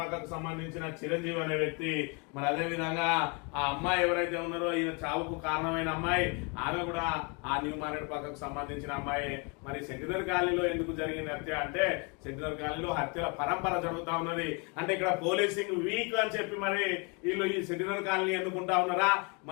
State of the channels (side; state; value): right; quieter; 32.6 dB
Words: సంబంధించిన చిరంజీవి అనే వ్యక్తి. మరి అదే విధంగా ఆ అమ్మాయి ఎవరైతే ఉన్నారో ఈయన చావుకు కారణమైన అమ్మాయి, ఆమె కూడా ఆ న్యూ మారేడుపాకకు సంబంధించిన అమ్మాయి. మరి సెంటినరీ కాలనీలో ఎందుకు జరిగింది హత్య అంటే సెంటినరీ కాలనీలో హత్యల పరంపర జరుగుతా ఉన్నది. అంటే ఇక్కడ పోలీసింగ్ వీక్ అని చెప్పి మరి వీళ్ళు ఈ సెంటినరీ కాలనీ ఎన్నుకుంటా ఉన్నారా,